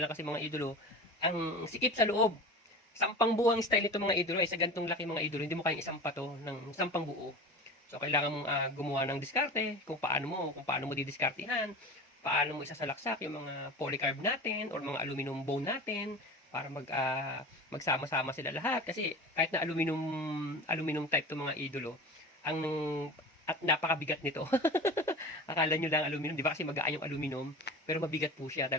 lang kasi mga idolo, ang sikip sa loob. Sampang buo ang style nito mga idolo. Sa gantong laki mga idolo, hindi mo kayang isang pato ng sampang buo. So kailangan mong gumawa ng diskarte kung paano mo didiskartehan, paano mo isasalaksak yung mga polycarb natin or mga aluminum bone natin para magsama-sama sila lahat kasi kahit na aluminum type to mga idolo, ang at napakabigat nito. Akala nyo lang aluminum, di ba kasi magaan yung aluminum, pero mabigat po siya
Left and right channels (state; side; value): normal; both; correlation 0.33